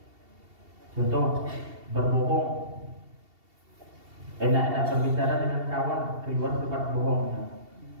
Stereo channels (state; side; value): late; left; 2.7 ms